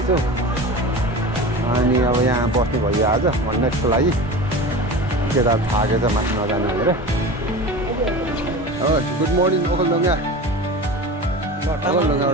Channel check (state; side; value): normal; both; correlation 0.31